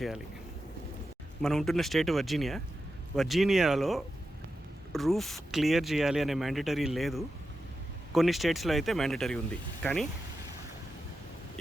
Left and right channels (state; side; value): normal; both; correlation 0.90